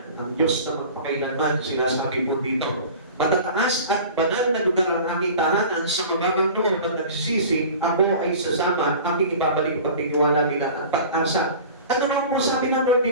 ang Diyos na magpakailanman, sinasabi po dito. Matataas at banal na lugar ang aking tahanan sa mababang loob at nagsisisi, ako ay sasama, aking ibabalik ang pagtitiwala nila at pag-asa. Ano naman po sabi ng Lord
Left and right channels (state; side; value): inverted; both; correlation -0.40